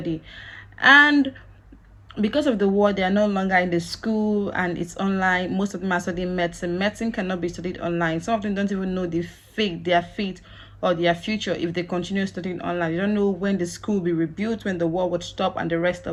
and because of the war, they are no longer in the school and it's online. Most of them are studying medicine. Medicine cannot be studied online. Some of them don't even know their fate or their future if they continue studying online. They don't know when the school will be rebuilt, when the war would stop, and the rest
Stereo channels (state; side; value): identical; both; correlation 1.00